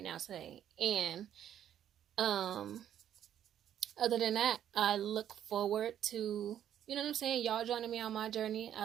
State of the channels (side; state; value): left; quieter; 10.4 dB